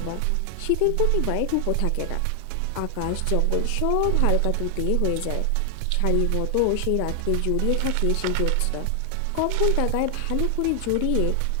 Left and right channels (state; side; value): different; both; correlation 0.00